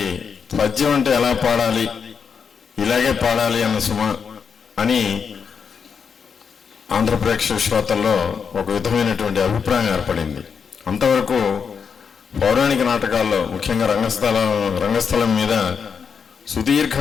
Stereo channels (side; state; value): right; quieter; 6.3 dB